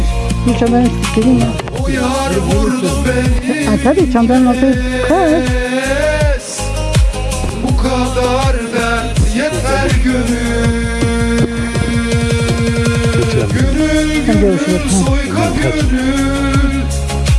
Dur çantanı sikeyim ya. O yar vurdu beni Ay tabii çantanın altı kır. kez. Bu kadar dert yeter gönül. Gönül Hadi gönül görüşürüz. soyka gönül.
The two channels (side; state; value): both; identical; correlation 1.00